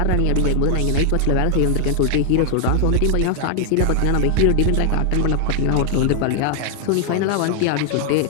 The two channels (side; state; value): both; different; correlation 0.00